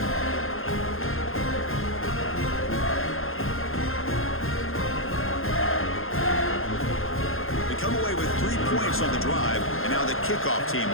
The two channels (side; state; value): right; late; 0.60 ms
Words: They come away with 3 points on the drive, and now the kickoff team